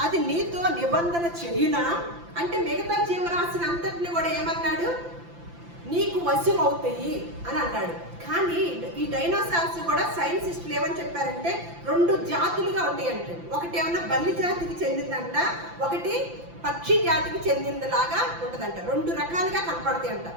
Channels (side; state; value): left; late; 5.9 ms